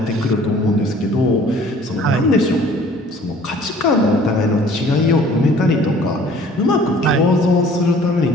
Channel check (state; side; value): normal; both; correlation 0.52